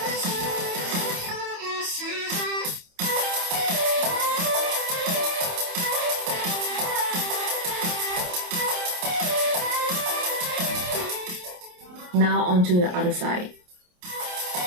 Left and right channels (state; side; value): late; left; 28 ms